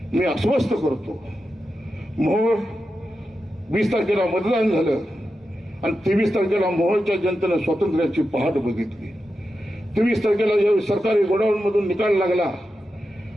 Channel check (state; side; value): normal; both; correlation 0.90